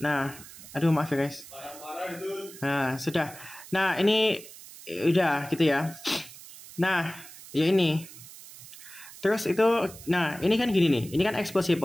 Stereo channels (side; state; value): right; noise; hiss, 17 dB below the sound